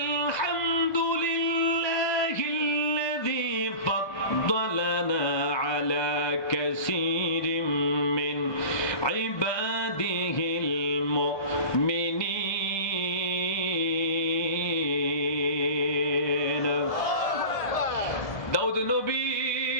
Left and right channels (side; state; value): right; late; 1.5 ms